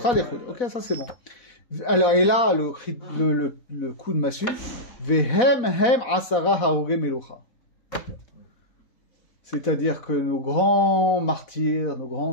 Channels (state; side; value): late; right; 4.1 ms